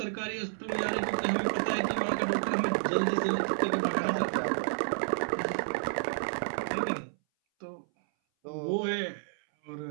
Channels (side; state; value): left; silent; 57 dB below the other